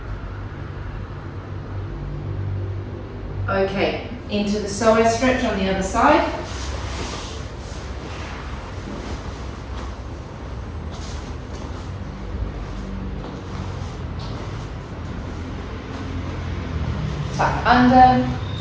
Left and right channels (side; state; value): both; identical; correlation 1.00